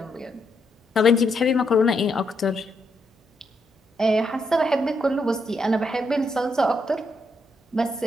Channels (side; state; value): both; normal; correlation 0.78